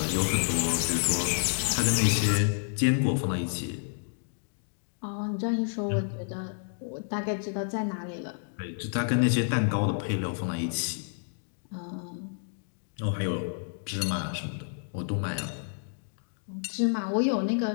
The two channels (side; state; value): right; silent; digital silence